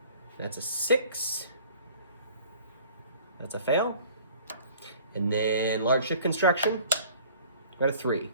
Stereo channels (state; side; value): inverted; both; correlation -0.50